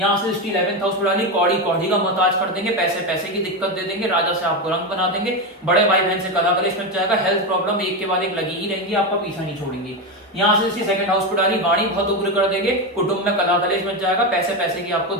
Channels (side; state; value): both; normal; correlation 0.14